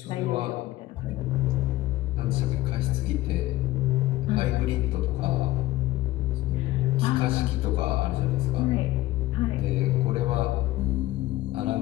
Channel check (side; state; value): right; quieter; 16.9 dB